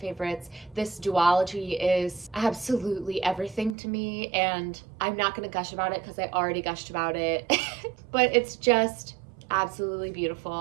This duology is absolutely everything to me, and I'm not going to gush about it because I already gushed about it, but it's just absolutely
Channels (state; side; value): drops out; left; at 3.8 s